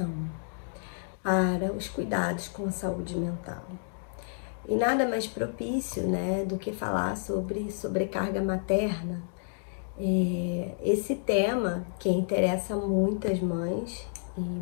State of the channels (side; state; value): right; silent; digital silence